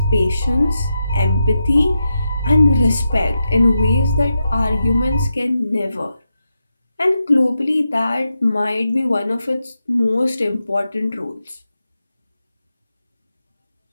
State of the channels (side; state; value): both; inverted; correlation -0.87